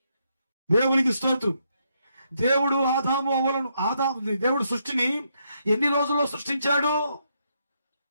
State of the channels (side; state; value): both; inverted; correlation -0.78